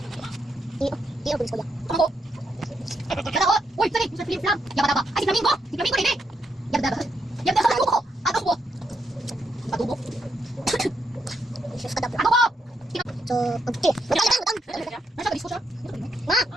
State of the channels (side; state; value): both; normal; correlation 0.79